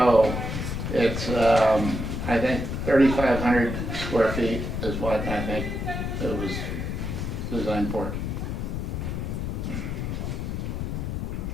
it's, I think 3,500 square feet is what I think it was designed for.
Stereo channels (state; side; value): noise; left; rumble, 3 dB below the sound